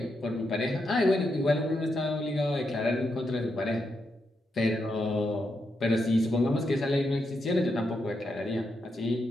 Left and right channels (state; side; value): normal; both; correlation 0.83